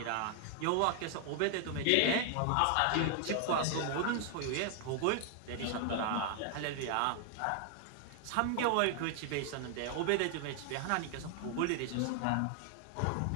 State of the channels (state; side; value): different; both; correlation 0.00